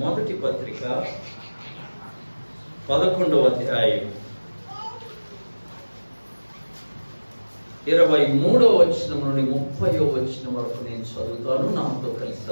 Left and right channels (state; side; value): inverted; both; correlation -1.00